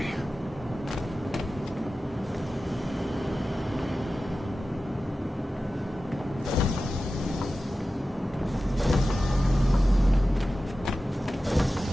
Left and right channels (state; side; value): normal; both; correlation 0.94